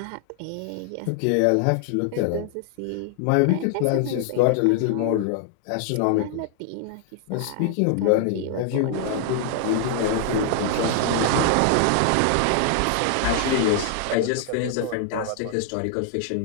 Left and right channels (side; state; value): both; different; correlation 0.00